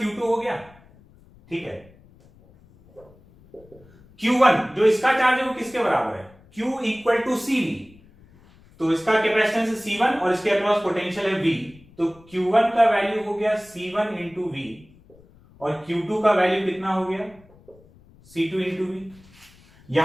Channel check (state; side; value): noise; left; rumble, 27 dB below the sound